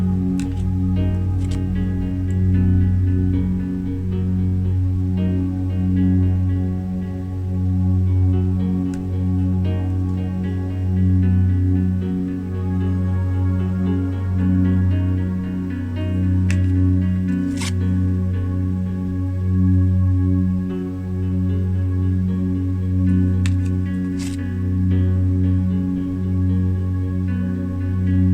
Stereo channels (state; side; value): identical; both; correlation 1.00